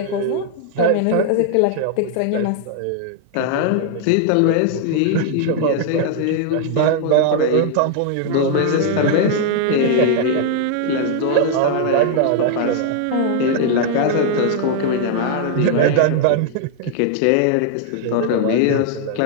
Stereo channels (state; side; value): different; both; correlation -0.01